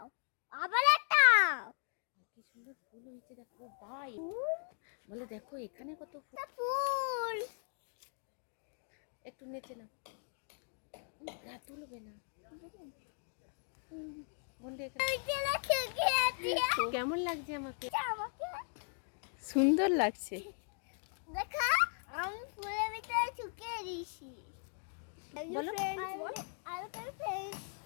আবার একটা। কি সুন্দর ফুল হয়েছে দেখো ভাই। বলো দেখো এখানে কত ফুল। ফুল। একটু নেচে না, রাত তুলবে না। বন্ধে কেমন লাগছে আমাকে? আমাকে সুন্দর লাগছে। দেখা, আমি ফুলের ভিতরে ঢুকিয়ে দিয়েছি। বলো।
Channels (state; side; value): silent; right; 52 dB below the other